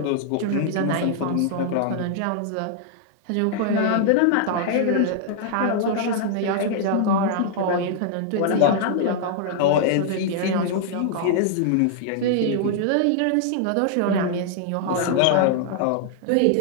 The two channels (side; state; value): both; different; correlation 0.00